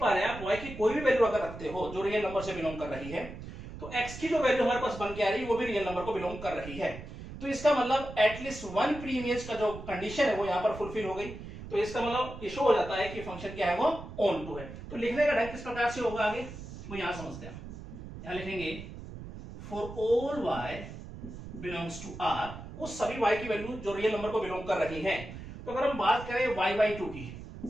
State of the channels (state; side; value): noise; right; rumble, 12 dB below the sound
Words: रहे हैं, आप y की कोई भी वैल्यू अगर रखते हो जो रियल नंबर से बिलोंग कर रही है, तो x की जो वैल्यू हमारे पास बन के आ रही है वो भी रियल नंबर को बिलोंग कर रही है। तो इसका मतलब एटलीस्ट वन प्री इमेज का जो कंडीशन है वो यहाँ पर फुलफिल हो गई। तो इसका मतलब ये शो हो जाता है कि फंक्शन क्या है, वो ऑन टू है। तो लिखने का ढंग किस प्रकार से होगा आगे वो यहाँ समझते हैं। यहाँ लिखेंगे for all y belongs to r, उस सभी y की वैल्यू जो रियल नंबर को बिलोंग कर रही है। तो अगर हम बात करें y बाई 2 की